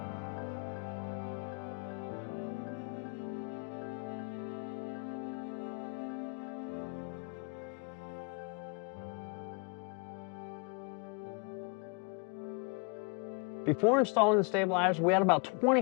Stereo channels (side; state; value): right; quieter; 34.7 dB